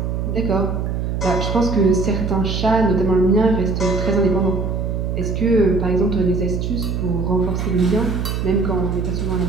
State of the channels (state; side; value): noise; right; hum, 2 dB below the sound